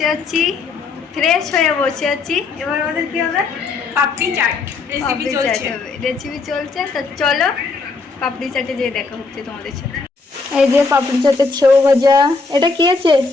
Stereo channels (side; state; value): right; quieter; 4.2 dB